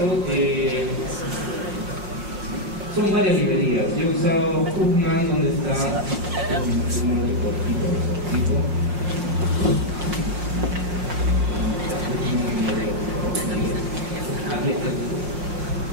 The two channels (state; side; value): late; left; 5.6 ms